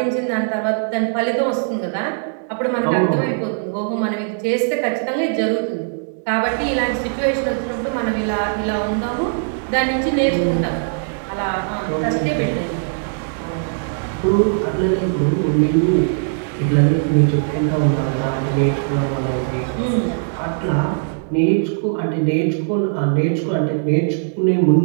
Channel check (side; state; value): left; silent; digital silence